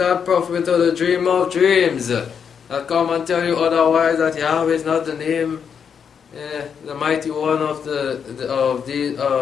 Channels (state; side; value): quieter; right; 7.1 dB